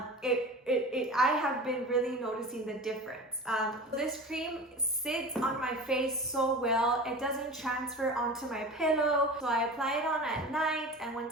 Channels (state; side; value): normal; both; correlation 0.34